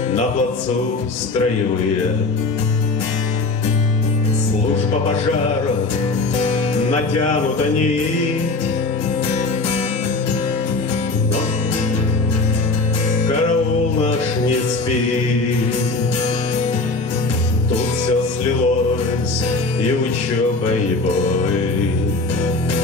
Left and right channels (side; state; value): right; quieter; 3.5 dB